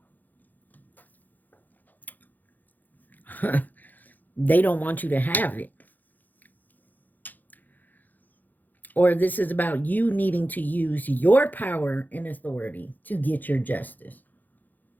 they don't want you to have it. Or this is about you needing to use your power and authority to get your justice.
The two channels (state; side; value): late; right; 0.084 ms